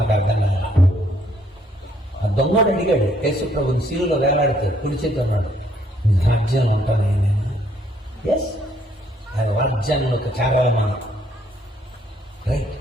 అర్థం కాదు. ఆ దొంగోడు అడిగాడు యేసుప్రభుని శిలువలో వేలాడితే, కుడి చేతి ఉన్నాడు, రాజ్యంలో ఉంటాను నేను. ఎస్, ఆయన రాజ్యంలోకి చేరాలి మనం. రైట్,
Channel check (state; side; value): normal; both; correlation 0.67